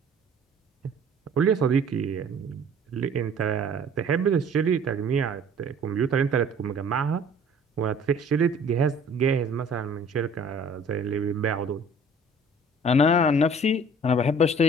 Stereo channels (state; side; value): normal; both; correlation 0.51